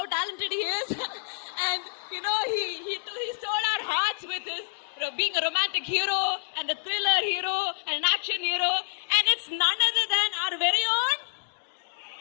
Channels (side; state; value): right; silent; 59 dB below the other